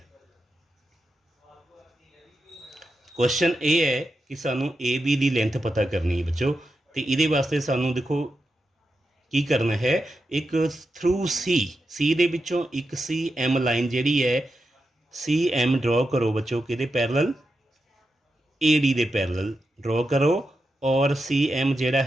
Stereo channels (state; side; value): normal; both; correlation 0.88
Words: ਕੁਐਸਚਨ ਇਹ ਹੈ ਕਿ ਸਾਨੂੰ ਏ ਬੀ ਦੀ ਲੈਂਥ ਪਤਾ ਕਰਨੀ ਹੈ ਬੱਚੋ, ਅਤੇ ਇਹਦੇ ਵਾਸਤੇ ਸਾਨੂੰ ਦੇਖੋ ਕੀ ਕਰਨਾ ਹੈ, ਇੱਕ ਥਰੂ ਸੀ ਦੇ ਵਿੱਚੋਂ ਇੱਕ ਸੀ ਐਮ ਲਾਈਨ ਜਿਹੜੀ ਹੈ ਸੀ ਐਮ ਡਰੋ ਕਰੋ ਬੱਚੋ, ਕਿਹਦੇ ਪੈਰਲਲ, ਏ ਡੀ ਦੇ ਪੈਰਲਲ ਡਰੋ ਕਰੋ, ਔਰ ਸੀ ਐਮ ਜਿਹੜਾ